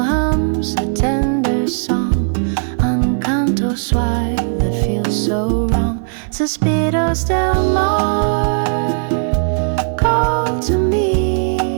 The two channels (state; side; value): silent; left; 59 dB below the other